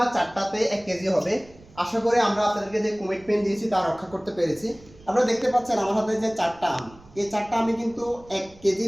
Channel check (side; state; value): right; noise; rumble, 24 dB below the sound